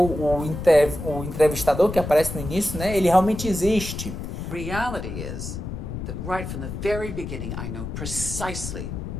entrevistador que aparece no início, né, ele realmente existe. Reality is that right from the very beginning I know precisely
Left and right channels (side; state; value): left; noise; rumble, 7 dB below the sound